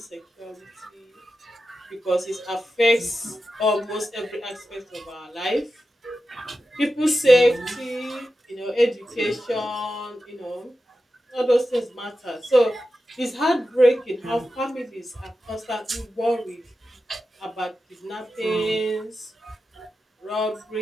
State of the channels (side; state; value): both; normal; correlation 0.91